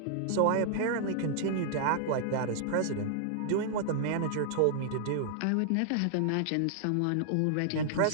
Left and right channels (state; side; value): different; both; correlation -0.01